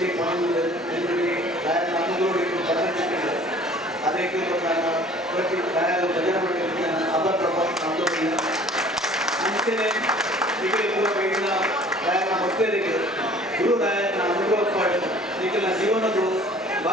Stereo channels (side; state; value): both; normal; correlation 0.50